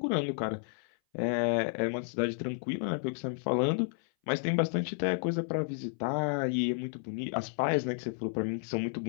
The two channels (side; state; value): right; silent; 57 dB below the other